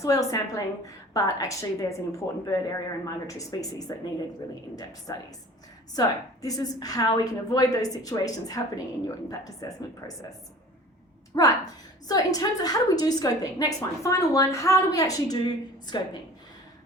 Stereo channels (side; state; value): both; normal; correlation 0.44